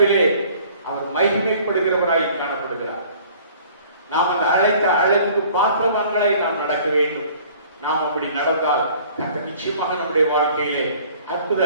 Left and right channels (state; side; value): inverted; both; correlation -0.52